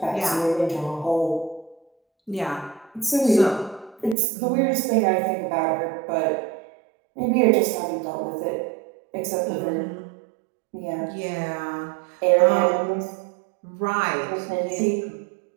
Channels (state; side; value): drops out; left; at 4.2 s